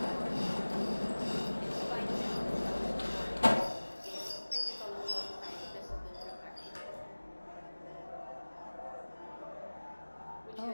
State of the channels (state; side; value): inverted; both; correlation -1.00